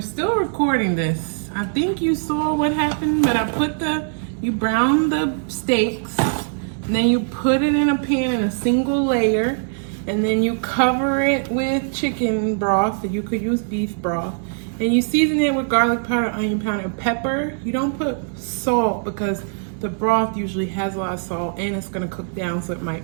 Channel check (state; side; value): silent; left; 65 dB below the other